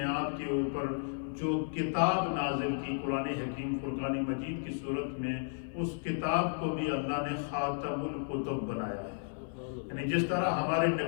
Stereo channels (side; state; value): right; silent; 55 dB below the other